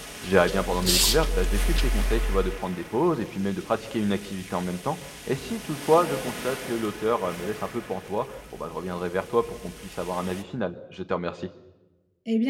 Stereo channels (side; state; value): both; identical; correlation 1.00